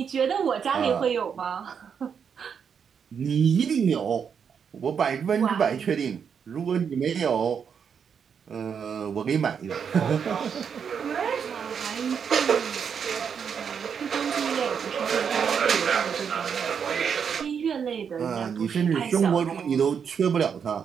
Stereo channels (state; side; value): quieter; left; 7.0 dB